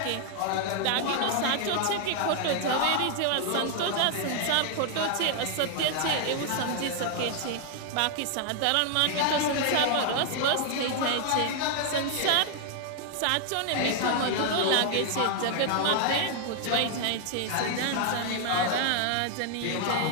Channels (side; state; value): both; different; correlation 0.00